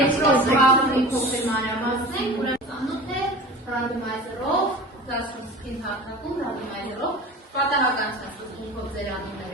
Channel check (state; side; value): normal; both; correlation 0.36